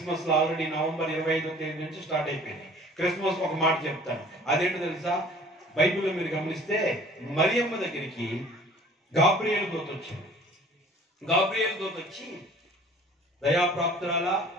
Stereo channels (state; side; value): normal; both; correlation 0.50